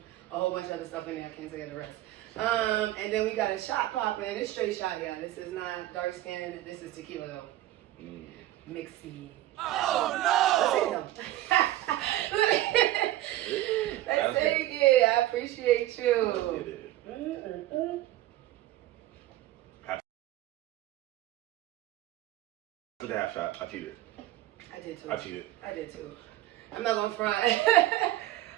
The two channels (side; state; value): left; quieter; 15.0 dB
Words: a whole bunch of other stuff in there. I can't say the rest. And then we got a shot popping. It's straight shot, y'all. This is not dark skin. This is tequila, though. Mixy. Oh, no! Let's take it. I appreciate you. Took a half shot. I cheated. I did too. I cheated. I did too. I'm not gonna front.